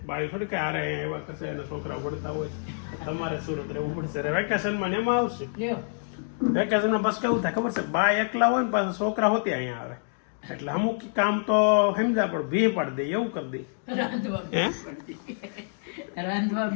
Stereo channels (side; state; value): right; silent; digital silence